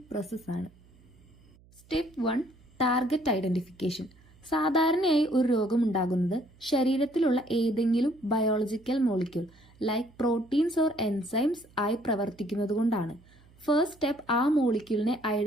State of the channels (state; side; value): noise; right; hum, 27 dB below the sound